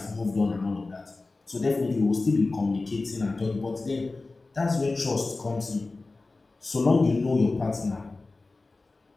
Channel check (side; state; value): right; quieter; 3.4 dB